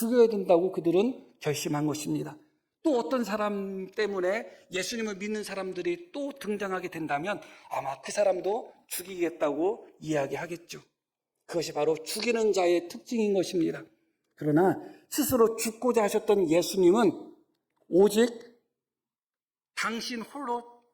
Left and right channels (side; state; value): both; identical; correlation 1.00